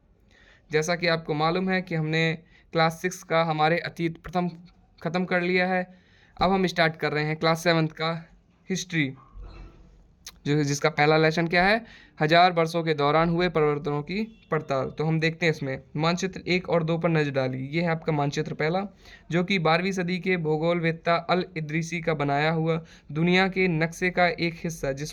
जैसा कि आपको मालूम है कि हमने क्लास 6 का हमारे अतीत प्रथम ख़त्म कर लिया है। अब हम स्टार्ट कर रहे हैं क्लास 7th का हिस्ट्री, जिसका पहला लेसन क्या है, हजार वर्षों के दौरान हुए परिवर्तनों की पड़ताल। तो हम देखते हैं इसमें मानचित्र 1 और 2 पर नजर डाली। ये है आपका मानचित्र पहला, जो कि 12वीं सदी के भूगोलवेत्ता अल इदरीसी का बनाया हुआ दुनिया के नक्शे का एक हिस्सा,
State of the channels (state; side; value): identical; both; correlation 1.00